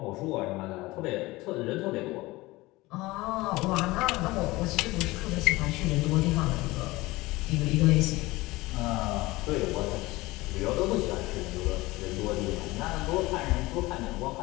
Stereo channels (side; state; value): right; quieter; 20.6 dB